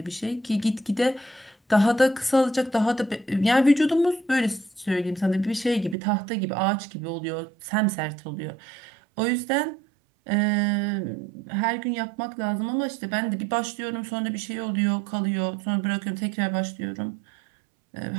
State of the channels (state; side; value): drops out; left; at 6.0 s